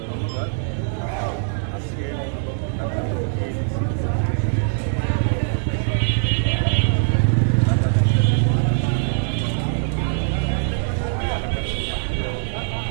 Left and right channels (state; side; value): silent; left; digital silence